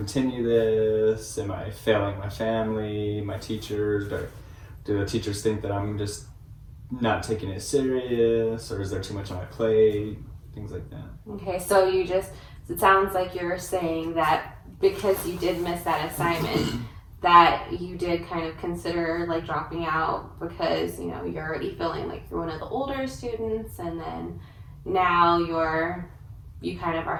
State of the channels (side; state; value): both; identical; correlation 1.00